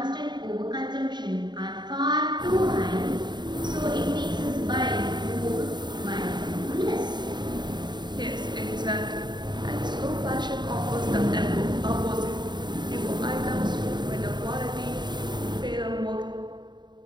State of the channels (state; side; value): late; left; 0.21 ms